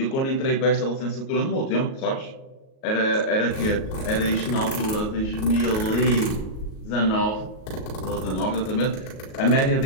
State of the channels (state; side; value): late; right; 37 ms